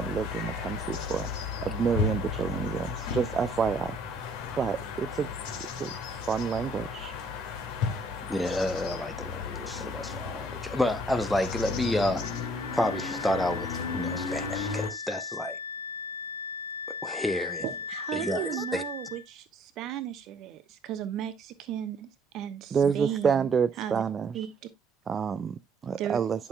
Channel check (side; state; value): both; normal; correlation 0.60